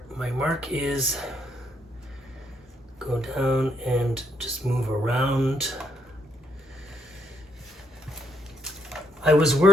my mark is, go down and just move around. I was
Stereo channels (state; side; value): normal; both; correlation 0.75